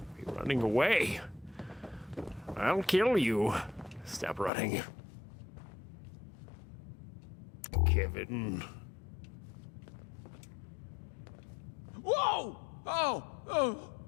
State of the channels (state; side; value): drops out; right; at 4.5 s